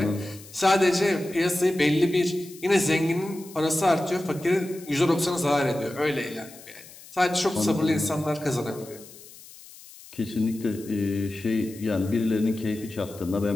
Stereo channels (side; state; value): left; noise; hiss, 19 dB below the sound